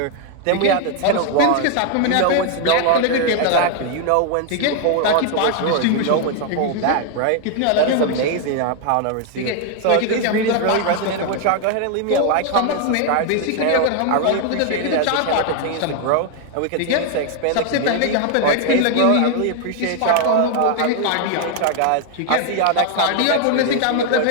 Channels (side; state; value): both; different; correlation 0.00